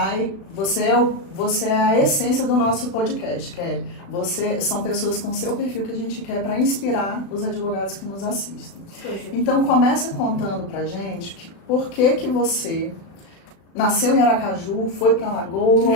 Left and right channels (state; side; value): late; right; 36 ms